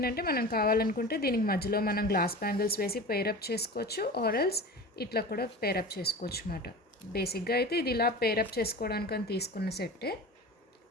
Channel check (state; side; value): normal; both; correlation 0.33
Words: మనం కావాలనుకుంటే దీనికి మధ్యలో మనం గ్లాస్ బ్యాంగిల్స్ వేసి పేరప్ చేసుకోవచ్చు, ఆర్ఎల్స్ ఇట్లా కూడా పేరప్ చేసుకోవచ్చు అన్నమాట. బేసిక్గా అయితే ఇది ఇలా పేరప్ చేసుకోవడానికి అని తీసుకున్న సెట్టే.